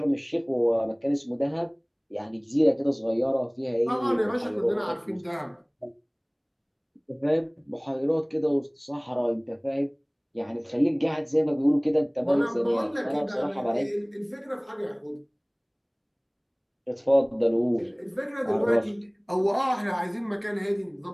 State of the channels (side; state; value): both; identical; correlation 1.00